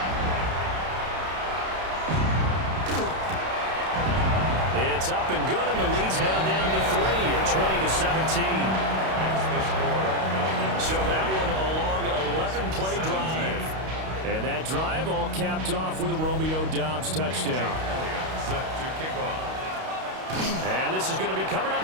It's up and good, and the lead's now down to 3 at 20-17. So that one a long 11-play drive. And that drive all capped off with a Romeo Doubs touchdown. Set to kick off. And this is going to be covered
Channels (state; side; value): late; left; 32 ms